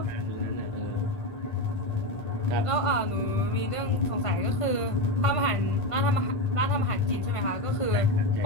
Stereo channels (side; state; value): right; late; 1.5 ms